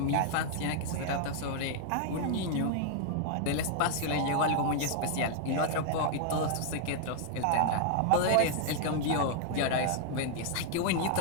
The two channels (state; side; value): different; both; correlation 0.00